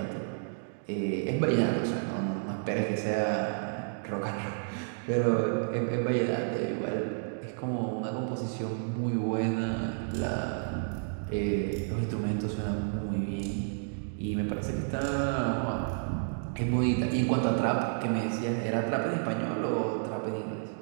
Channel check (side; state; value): left; silent; digital silence